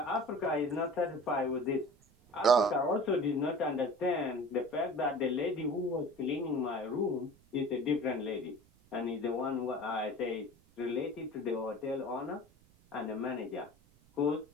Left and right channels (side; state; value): right; noise; rumble, 29 dB below the sound